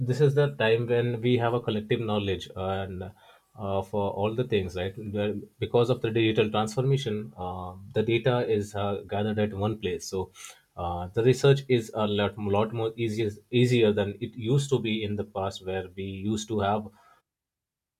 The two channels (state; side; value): identical; both; correlation 1.00